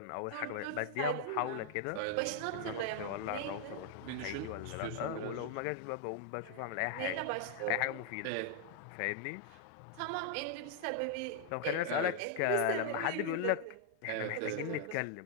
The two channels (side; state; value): both; different; correlation 0.00